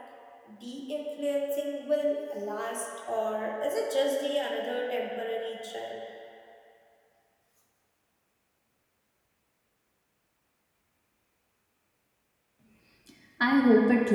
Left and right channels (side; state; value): both; identical; correlation 1.00